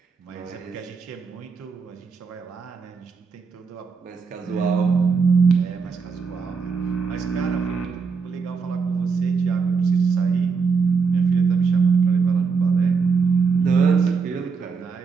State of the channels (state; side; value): quieter; left; 5.2 dB